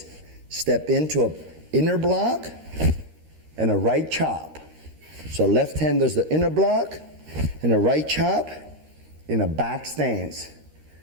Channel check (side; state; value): left; late; 13 ms